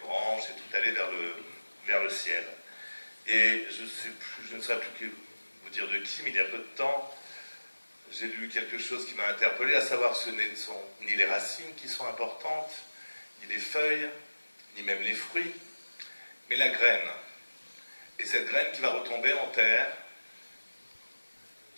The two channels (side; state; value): both; inverted; correlation -1.00